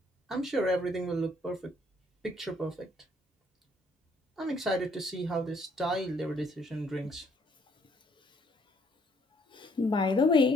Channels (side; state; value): both; normal; correlation 0.66